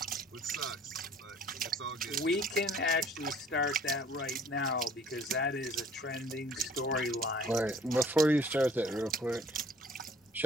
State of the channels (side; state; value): both; normal; correlation 0.54